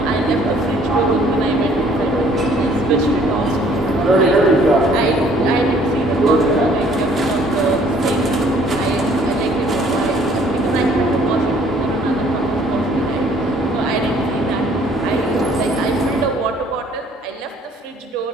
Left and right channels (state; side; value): normal; both; correlation 0.59